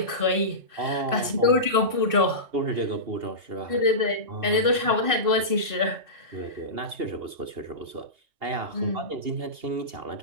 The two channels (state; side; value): late; left; 2.6 ms